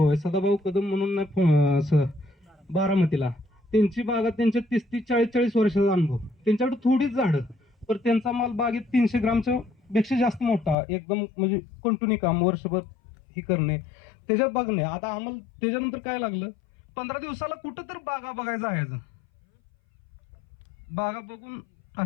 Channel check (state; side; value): drops out; right; at 10.8 s